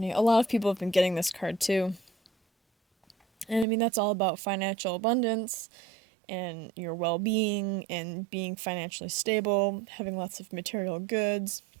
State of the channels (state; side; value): drops out; left; at 3.7 s